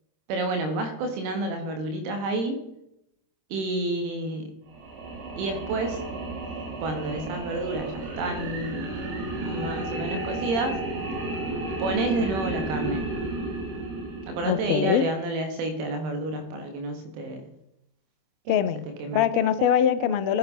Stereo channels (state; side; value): late; left; 26 ms